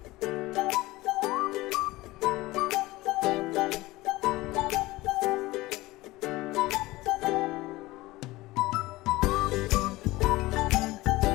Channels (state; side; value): quieter; right; 19.4 dB